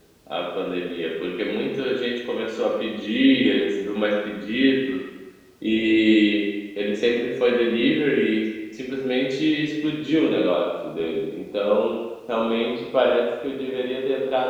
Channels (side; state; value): both; identical; correlation 1.00